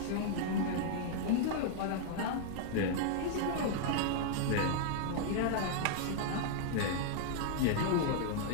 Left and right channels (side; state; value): both; different; correlation -0.01